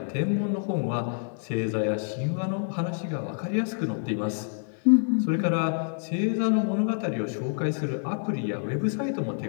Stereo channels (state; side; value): silent; right; digital silence